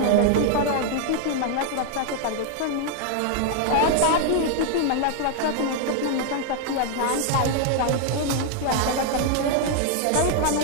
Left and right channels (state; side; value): different; both; correlation 0.00